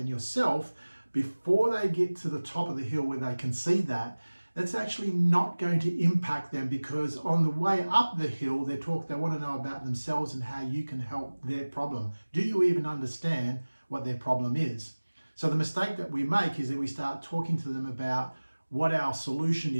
yourself before they get to the top of the hill where they can see that, that's actually not going to impact them, because on the way up the hill, they want to know about themselves and how you can help their problem. Do you even understand what their problem is? So the mistake that we make is that we start talking to them about what our solution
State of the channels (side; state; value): both; inverted; correlation -1.00